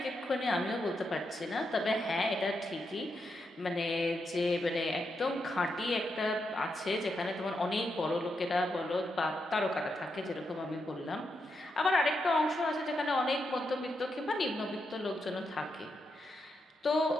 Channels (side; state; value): both; normal; correlation 0.84